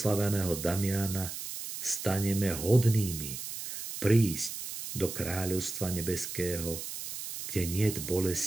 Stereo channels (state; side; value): noise; right; hiss, 8 dB below the sound